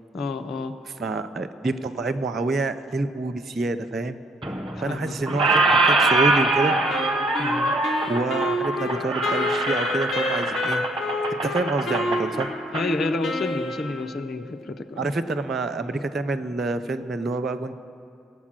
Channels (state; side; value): normal; both; correlation 0.64